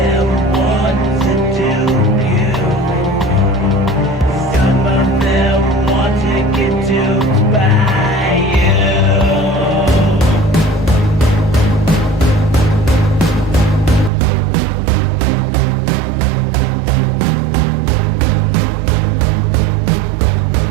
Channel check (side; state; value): left; drops out; at 14.1 s